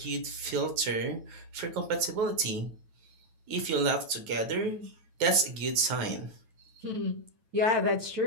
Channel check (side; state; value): left; late; 9.5 ms